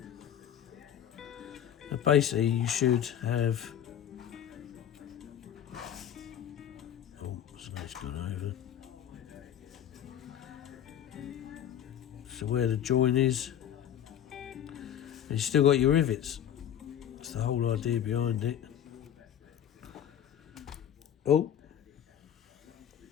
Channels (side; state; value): right; quieter; 9.9 dB